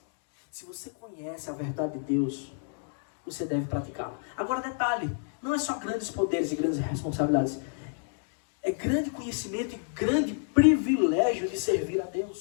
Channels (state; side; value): silent; right; digital silence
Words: Se você conhece a verdade de Deus, você deve praticá-la. Agora, detalhe, não é só grandes poderes e grandes responsabilidades. É grande conhecimento e grande privilégio de servir a